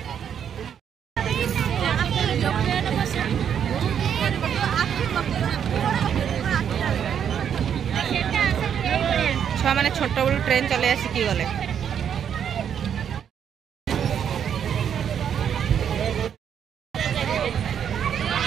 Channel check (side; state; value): left; quieter; 8.5 dB